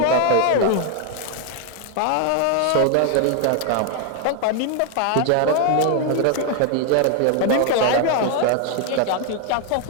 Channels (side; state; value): both; different; correlation 0.00